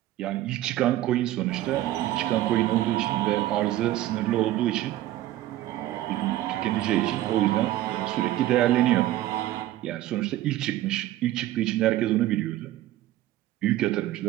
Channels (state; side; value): quieter; left; 14.7 dB